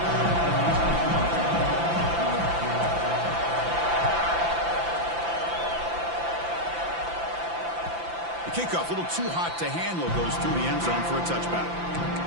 The kickoff, a little too hot to handle, goes through the end zone for a touchback.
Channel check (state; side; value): late; left; 5.9 ms